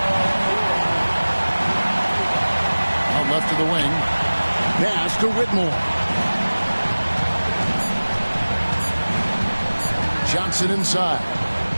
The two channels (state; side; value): inverted; both; correlation -1.00